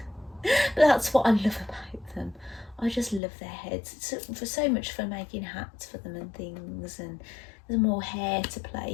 that's what I love about them. I just love their heads. It's for so much fun making hats for them and things, and there's more hair to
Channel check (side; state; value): right; drops out; at 3.2 s